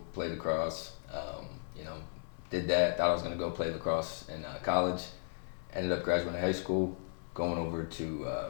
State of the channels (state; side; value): silent; right; 54 dB below the other